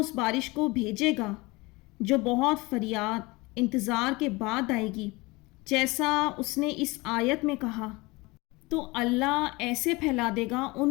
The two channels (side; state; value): right; quieter; 23.5 dB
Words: بارش کو بھیجے گا جو بہت فریاد انتظار کے بعد آئے گی، جیسا اس نے اس آیت میں کہا، تو اللہ ایسے پھیلا دے گا،